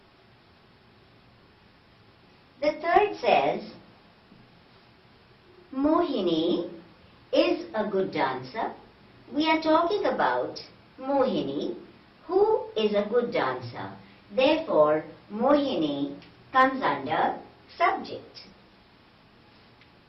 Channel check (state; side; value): identical; both; correlation 1.00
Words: The third says, Mohini is a good dancer. We are talking about Mohini, who is a good dancer. Therefore, Mohini comes under subject.